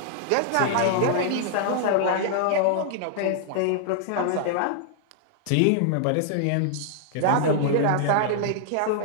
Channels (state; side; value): different; both; correlation -0.01